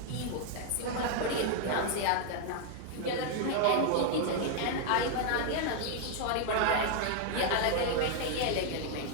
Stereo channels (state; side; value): different; both; correlation 0.00